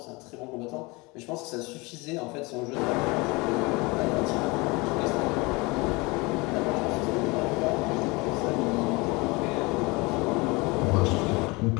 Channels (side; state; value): right; quieter; 25.4 dB